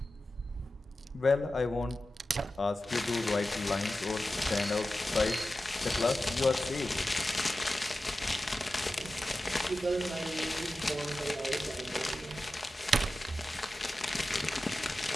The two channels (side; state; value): both; normal; correlation 0.94